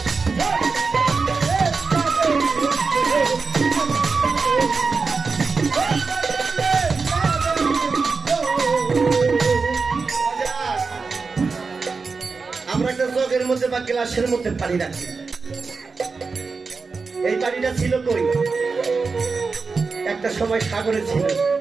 আমরা একটা জগের মধ্যে বা গ্লাসের মধ্যে পানি রাখি, এই পানিটা ছিল কই, একটা সময় সাগরে ছিল,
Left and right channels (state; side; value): quieter; left; 4.6 dB